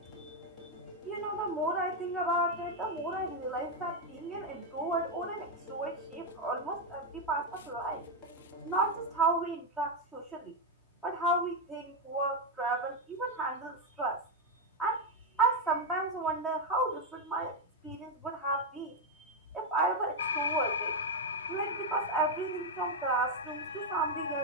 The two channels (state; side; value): normal; both; correlation 0.04